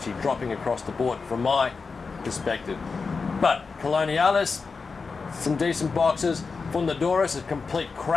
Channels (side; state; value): right; quieter; 4.7 dB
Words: dropping across the board from my perspective. But Coloniales, some decent boxes. Fundadores is complete